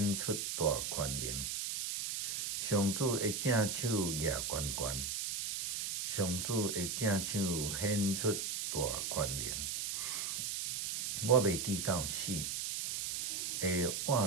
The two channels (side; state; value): right; noise; hiss, 2 dB below the sound